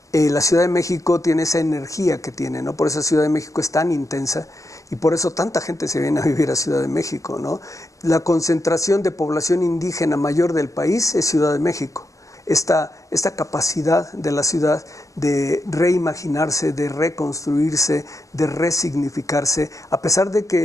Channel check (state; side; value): late; right; 0.16 ms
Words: la Ciudad de México tiene esa energía que tiene, ¿no? Por eso Ciudad de México es tan intensa y por eso tanta gente se viene a vivir a Ciudad de México, ¿no? La concentración de población indígena mayor del país es Ciudad de México. Esta capacidad de la ciudad de reimaginarse, de reconstruirse, de resignificarse, a pesar de